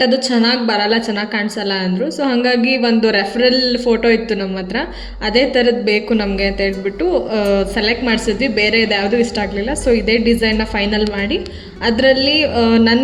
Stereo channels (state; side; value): identical; both; correlation 1.00